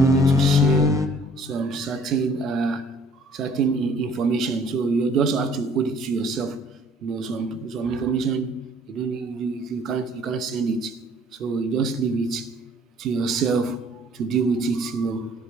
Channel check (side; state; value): both; normal; correlation 0.57